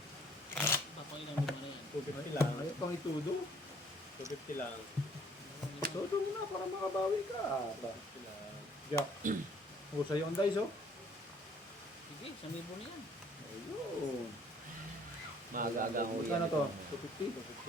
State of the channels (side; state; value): both; normal; correlation 0.59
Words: Papailan lima na yan. 250 lang. Ay, pang itudo. 250 lang. Todo mo na para makabawi ka. 250 lang. Jack. O, sa'yo ang dice, oh. Sige, 1,000 na yan. Ayun. Magagang Magkano to? 250?